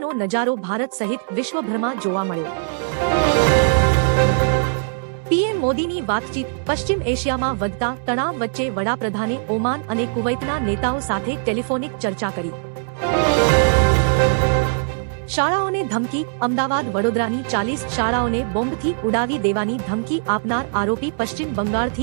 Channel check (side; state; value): left; silent; digital silence